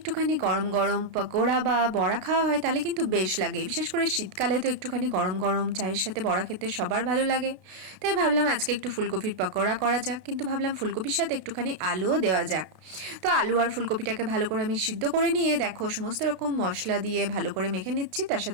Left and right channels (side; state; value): left; late; 33 ms